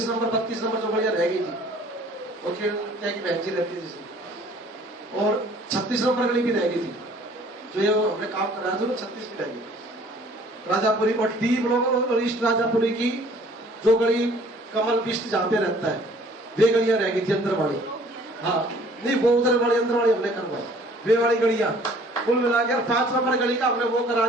नंबर 32 नंबर जो बढ़िया रह गई थी, और क्या की बहन जी रहती थी, और 36 नंबर गली भी रह गई थी, जो ये हमने काम कराया था, 36 भी रह गई। राजापुरी और D ब्लॉक और ईस्ट राजापुरी की जो गली कमल बिस्ट जहाँ पे रहता है, वे गलियां रह गई थी अंदर वाली। हाँ नहीं, वो उधर वाली अंदर वाली हमने करवाई, वे वाली गलियां कुल मिलाकर 5 नंबर गली का हमने वो करा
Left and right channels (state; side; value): normal; both; correlation 0.55